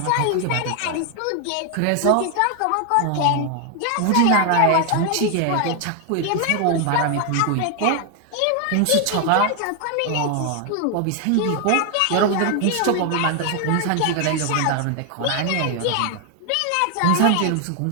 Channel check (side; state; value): both; different; correlation 0.00